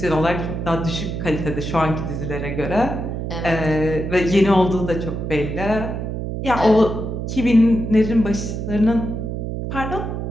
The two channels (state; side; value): noise; right; hum, 4 dB below the sound